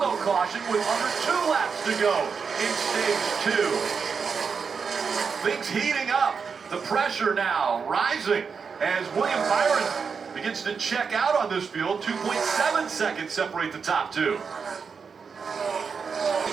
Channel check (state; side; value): quieter; left; 5.7 dB